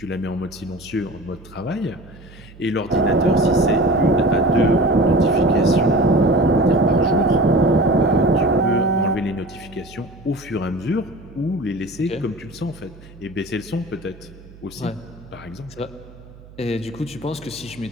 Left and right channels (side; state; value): right; noise; hum, 21 dB below the sound